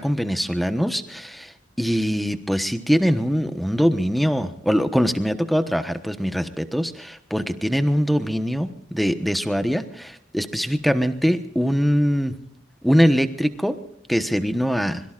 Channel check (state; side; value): normal; both; correlation 0.98